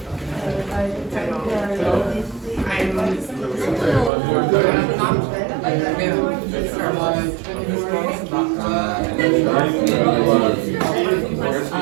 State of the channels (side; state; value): left; drops out; at 4.1 s